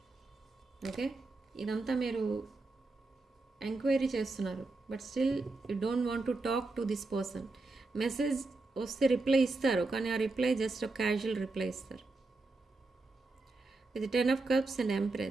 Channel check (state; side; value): quieter; left; 3.4 dB